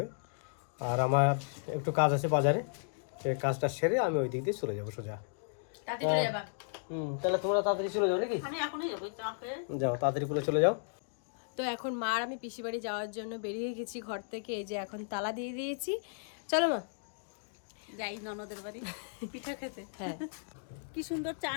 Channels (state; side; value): silent; right; digital silence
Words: আর আমার একটু কাজ আছে বাজারে, সেই কাজটা সেরে আমি ওই দিক দিয়ে চলে যাবো সোজা। তাহলে তোমরা তাড়াতাড়ি চলে যাও নাকি? আমি এখনই যাবো, চা খেয়ে যাও, তাড়াতাড়ি করে চলে যাও। তো এখন মা আর আমি পিসি বাড়ি যাওয়ার জন্য বেরিয়ে গেছি ঘর থেকে। এই যে এখন তালা দিয়ে দিয়েছি, চলো মা যাই ননদের বাড়ি পিঠা খেতে। হ্যাঁ কি সুন্দর চা